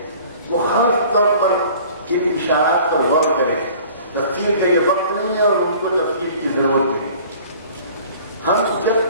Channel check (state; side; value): inverted; both; correlation -0.48